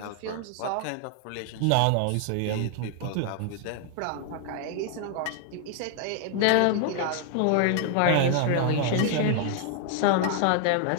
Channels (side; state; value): both; different; correlation 0.00